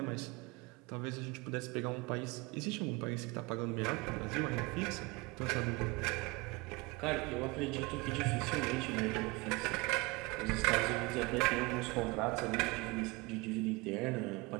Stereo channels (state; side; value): quieter; left; 25.2 dB